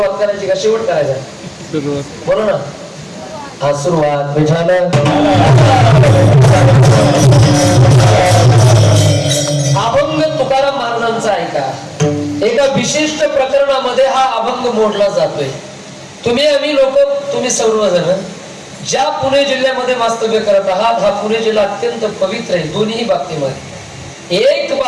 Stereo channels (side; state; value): both; identical; correlation 1.00